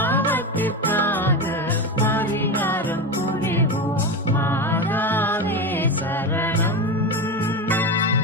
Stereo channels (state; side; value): normal; both; correlation 0.19